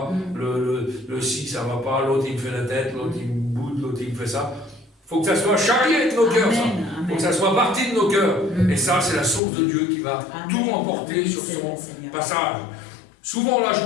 le ci ça va pas, l'autre il me fait la tête, l'autre il me boude, l'autre il me fait ça. Il faut que ça soit charrié de nos cœurs, ça. Il faut que ça soit parti de nos cœurs. Et ça, c'est la source de Dieu qui va tout emporter sur son passage. Souvent, la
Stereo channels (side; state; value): right; drops out; at 9.4 s